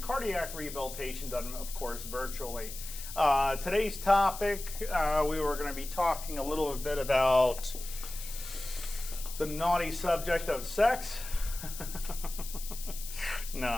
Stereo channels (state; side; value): noise; left; hiss, 11 dB below the sound